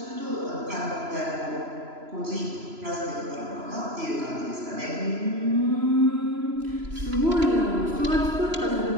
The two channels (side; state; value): left; late; 3.0 ms